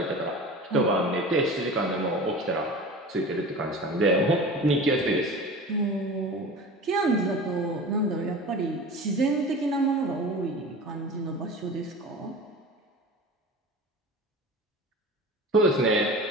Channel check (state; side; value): normal; both; correlation 0.35